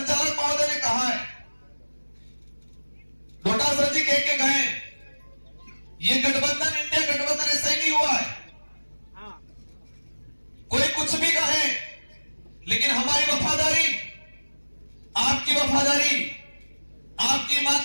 महोदय ने कहा है डोटासर जी कह के गए ये गठबंधन इंडिया गठबंधन ऐसा ही नहीं हुआ है कोई कुछ भी कहे लेकिन हमारी वफादारी आपकी वफादारी आपकी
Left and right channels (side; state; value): both; inverted; correlation -1.00